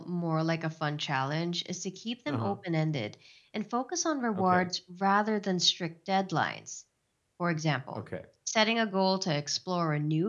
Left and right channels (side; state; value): both; identical; correlation 1.00